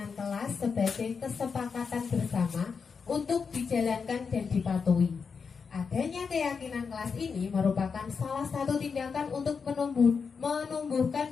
kelas sebagai kesepakatan bersama untuk dijalankan dan dipatuhi. Adanya keyakinan kelas ini merupakan salah satu tindakan untuk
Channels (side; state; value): right; quieter; 5.6 dB